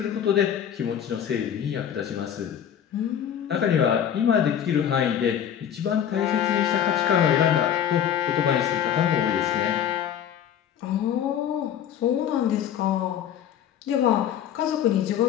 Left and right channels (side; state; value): right; quieter; 9.4 dB